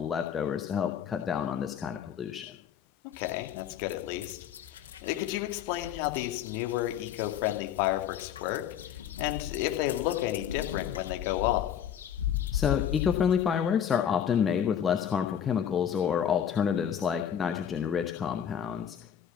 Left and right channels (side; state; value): right; quieter; 9.1 dB